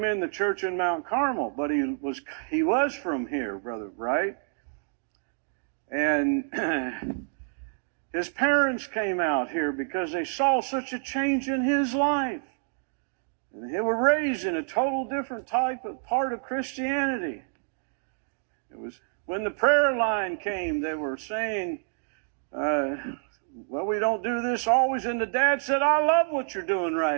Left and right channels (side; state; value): left; silent; digital silence